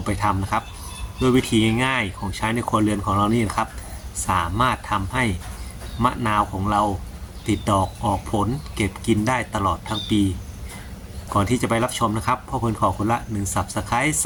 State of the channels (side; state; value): both; identical; correlation 1.00